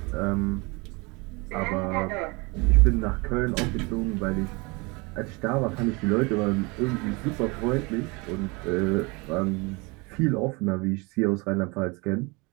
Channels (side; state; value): left; quieter; 27.3 dB